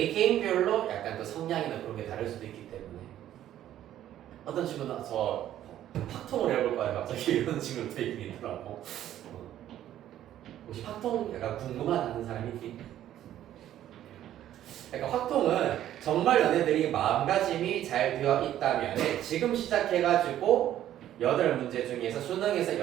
약간 그 성향이나 그런 게 다를 수도 있기 때문에 어떤 친구는 저 팍통을 해볼 거야 갑자기 이런 친구도 되게 있더라고. 혹시 팍통 약간 궁금하다는 사람이 있니? 그러니까 확통은 정말 너네들이 마음가짐이 잘 되어 있다면 지금 시작해가지고 8문제 중에서 수능에서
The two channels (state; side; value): quieter; left; 12.0 dB